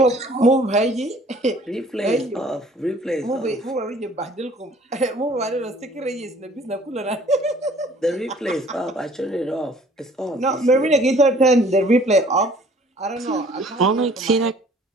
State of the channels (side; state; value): both; normal; correlation 0.54